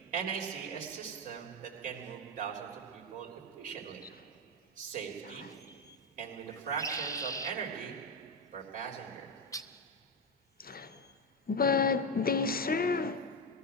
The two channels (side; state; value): both; normal; correlation 0.10